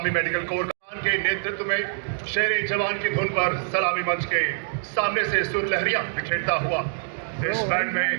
मेडिकल कोर के नेतृत्व में शेरे जवान की धुन पर सलामी मंच के सामने से सुर लहरियां बिखेरता हुआ। इस बैंड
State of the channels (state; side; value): silent; left; digital silence